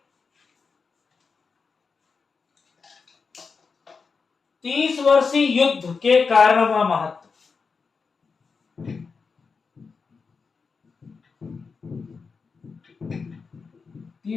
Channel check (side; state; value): right; quieter; 5.0 dB